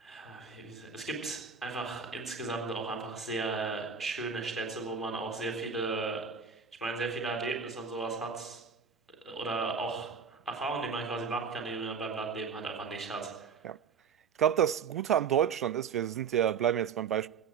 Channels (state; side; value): quieter; left; 6.2 dB